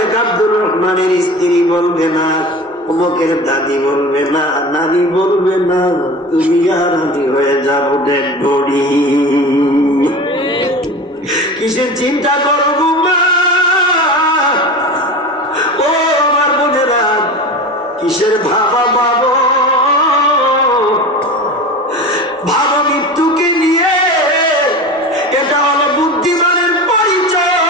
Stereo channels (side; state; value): both; normal; correlation 0.32